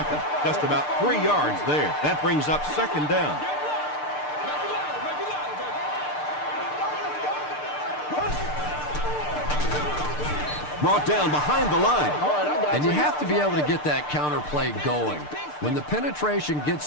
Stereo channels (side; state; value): right; late; 6.7 ms